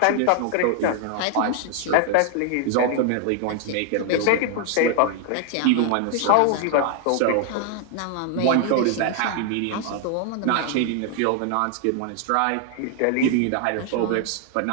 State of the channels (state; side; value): different; both; correlation 0.00